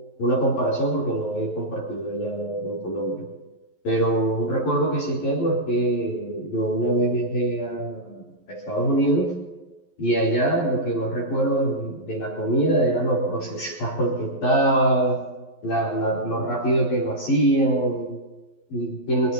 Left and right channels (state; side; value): late; right; 11 ms